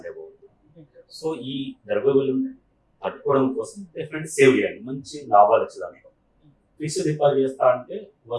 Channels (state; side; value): identical; both; correlation 1.00